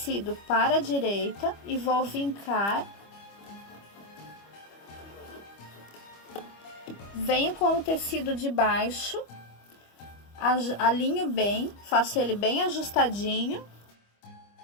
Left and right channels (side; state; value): right; late; 25 ms